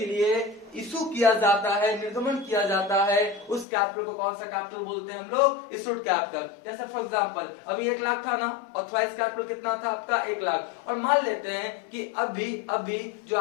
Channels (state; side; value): drops out; right; at 3.7 s